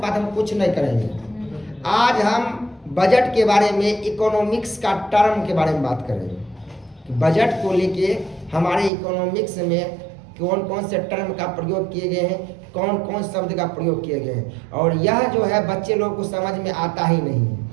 बात हम कुछ नहीं करेंगे। आज हम बजट के बारे में, इकोनॉमिक्स का टर्म के बारे में बात करेंगे। बजट को लेके हमारे इकोनॉमिक्स में कौन कौन से टर्म का प्रयोग किए गए हैं, कौन कौन शब्द का प्रयोग किए गए हैं, और यह जो है बच्चे लोग को समझ में आता ही नहीं है।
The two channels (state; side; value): drops out; left; at 8.9 s